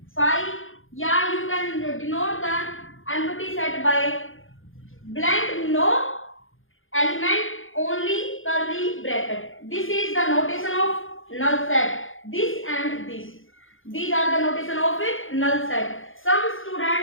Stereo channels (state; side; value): late; right; 0.59 ms